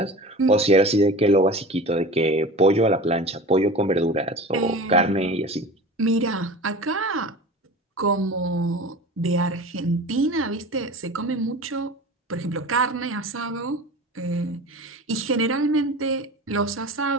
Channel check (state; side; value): normal; both; correlation 0.35